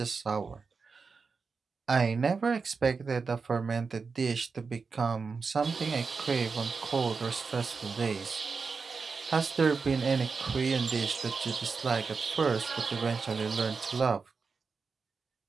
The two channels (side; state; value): left; quieter; 4.9 dB